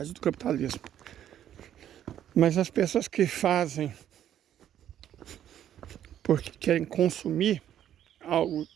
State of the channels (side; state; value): left; quieter; 10.8 dB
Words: do capitalismo. Mas as pessoas que fazem porque querem consumir algo